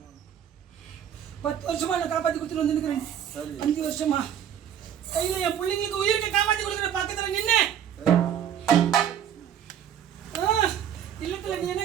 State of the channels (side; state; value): left; quieter; 9.4 dB